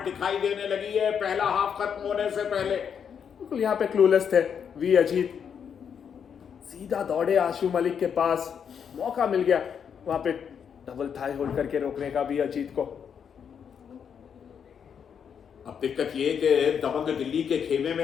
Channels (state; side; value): quieter; right; 7.5 dB